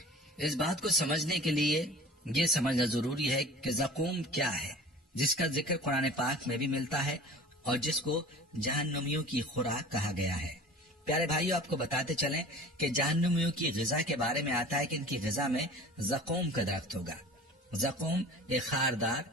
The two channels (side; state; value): both; normal; correlation 0.42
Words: اس بات کو سمجھنے کے لیے یہ سمجھنا ضروری ہے کہ زقوم کیا ہے، جس کا ذکر قرآن پاک میں بھی ملتا ہے اور جس کو جہنمیوں کی خوراک کہا گیا ہے۔ پیارے بھائیو، آپ کو بتاتے چلیں کہ جہنمیوں کی غذا کے بارے میں آتا ہے کہ ان کی غذا میں زقوم کا درخت ہوگا۔ زقوم ایک خاردار،